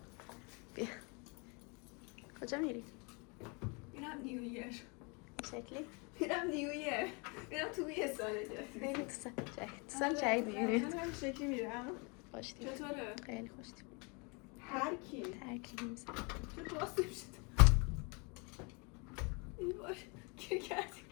بیا کجا میری؟ میرم نیویر. شکلی؟ میرم نیویر. میرم توی یه سال جدید. خیلی تو سال جدید میری. من هم شکلی میرم. خوشتیم. چطوره؟ خیلی خوشتیم. هر کی؟ ترکی نیست. چه باز نمیشد. ای باش گیر کردیم.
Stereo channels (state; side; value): quieter; right; 31.7 dB